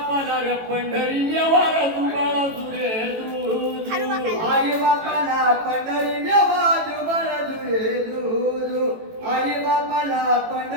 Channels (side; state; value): left; late; 18 ms